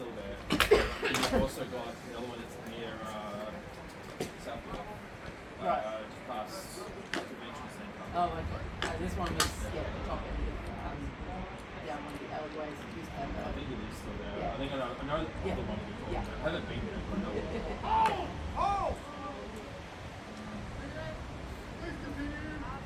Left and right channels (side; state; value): both; identical; correlation 1.00